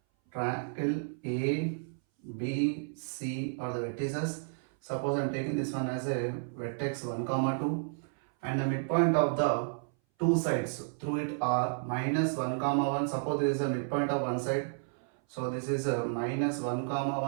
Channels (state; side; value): silent; left; 57 dB below the other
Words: A, B, C are the vertices. Suppose I am taking this one as a vertex 1, comma 2 and the midpoint of the two sides through it are minus 1, comma 1. Suppose there is a midpoint of one side. So this is a minus 1, comma